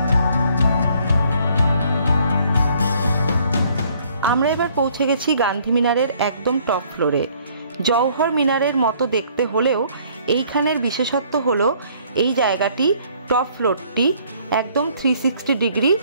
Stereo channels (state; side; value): inverted; both; correlation -0.62